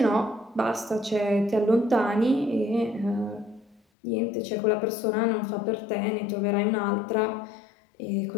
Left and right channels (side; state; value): right; drops out; at 3.8 s